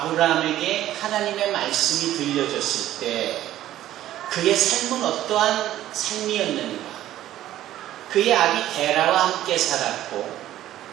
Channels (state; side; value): quieter; left; 13.3 dB